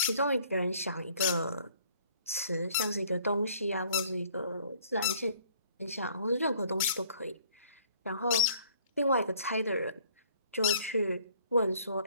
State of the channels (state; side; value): inverted; both; correlation -0.58